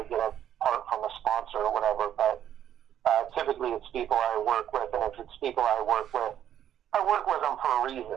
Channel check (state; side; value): quieter; left; 10.5 dB